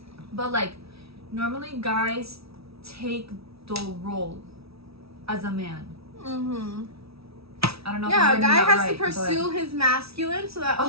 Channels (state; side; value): late; left; 0.76 ms